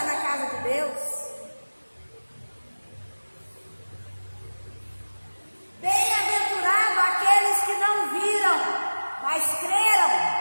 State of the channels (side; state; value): both; inverted; correlation -1.00